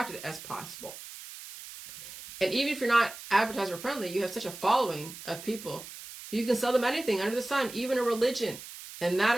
as possible. And even if you're not advertiser friendly, you have such a following of people who you can sell them anything under the sun, even a religion. And that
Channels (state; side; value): noise; right; hiss, 13 dB below the sound